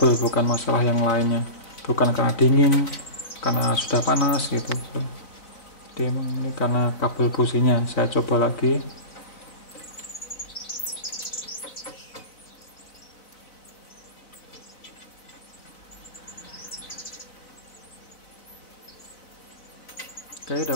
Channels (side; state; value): right; late; 4.0 ms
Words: bukan masalah yang lainnya, bukan karena dingin, karena sudah panas gitu. Jadi emang ini karena kabel businya. Saya coba lagi. Oke,